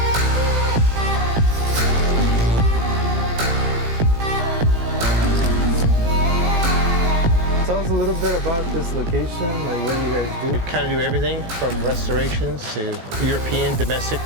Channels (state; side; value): late; left; 18 ms